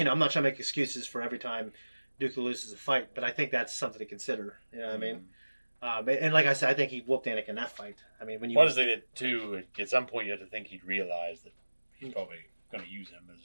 not trying to make excuses for every time Dooku loses a fight, but I think that's something to consider. You know what I mean? And like I said, I think he whooped Anakin in that fight. I mean, when you... What is it too? At some point, you have to think he'd realize that he's probably going to use him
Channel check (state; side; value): inverted; both; correlation -1.00